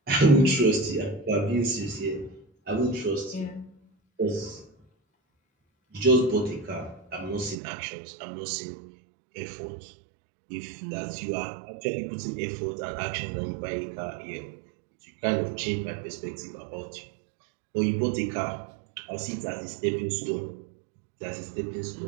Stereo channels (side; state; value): left; drops out; at 7.6 s